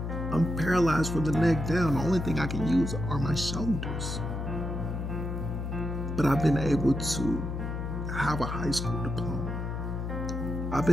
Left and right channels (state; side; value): noise; left; hum, 4 dB below the sound